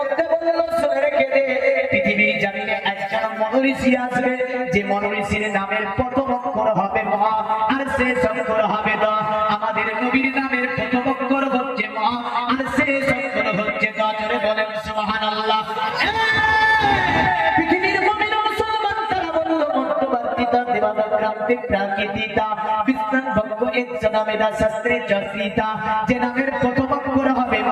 বলল শুনে রেখে দে, পৃথিবীর জমিনে একজন মনোঋষি আসবে, যে মনোঋষির নামের প্রথম অক্ষর হবে ম, আর শেষ অক্ষর হবে দ। আমাদের নবীর নামের প্রথম অক্ষর হচ্ছে ম, আর শেষ অক্ষর হচ্ছে দ। জোরে বলেন সুবহানাল্লাহ। পৃথিবীর মুমিন মুসলমান তারা বলল মধ্যবর্তীতা দিবাদাত রাতে প্রাকৃতিতা বিস্তার বঙ্গ এক সদামেদা শাস্ত্রে জাসিতা। যে নামের প্রথম অক্ষর হবে ম,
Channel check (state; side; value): identical; both; correlation 1.00